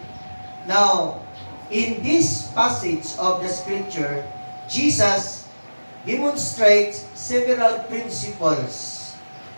now, in this passage of the scripture, Jesus demonstrates several principles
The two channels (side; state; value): both; inverted; correlation -1.00